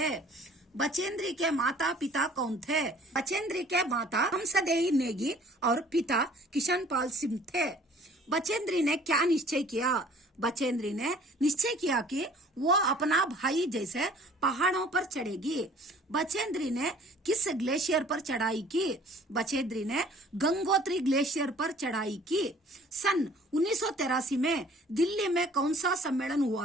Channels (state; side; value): normal; both; correlation 0.53